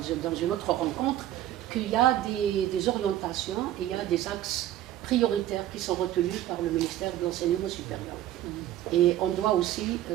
une autre rencontre qu'il y a des orientations et il y a des axes prioritaires qui sont retenus par le ministère de l'Enseignement supérieur. Et on doit aussi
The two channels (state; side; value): quieter; left; 12.9 dB